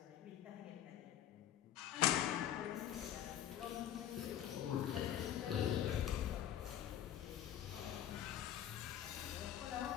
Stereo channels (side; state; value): right; quieter; 11.0 dB